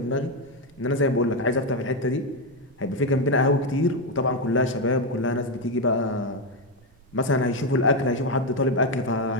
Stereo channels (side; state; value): right; noise; rumble, 29 dB below the sound